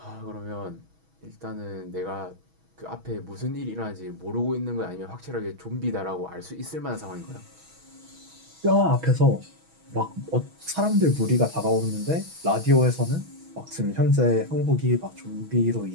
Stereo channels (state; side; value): late; left; 6.2 ms